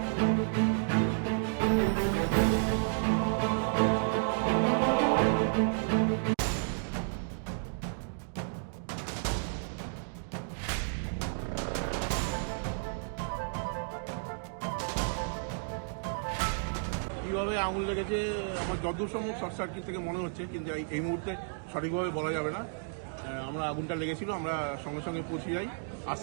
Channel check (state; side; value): silent; left; digital silence